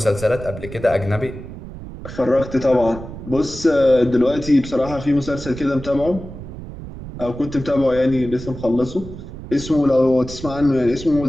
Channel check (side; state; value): right; noise; rumble, 12 dB below the sound